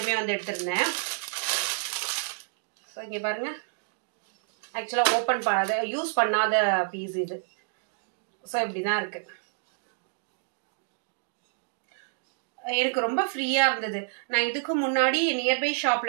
வந்து எடுத்திருந்தேன். இங்க பாருங்க, ஆக்சுவலா ஓபன் பண்ணாத யூஸ் பண்ணாத பீஸ் இது. ஸோ இப்படிதான் இருக்கு. எனக்கு ரொம்ப ஃப்ரீயா இருந்தது. நான் இதுக்கு முன்னாடி நியர்பை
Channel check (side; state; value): left; silent; digital silence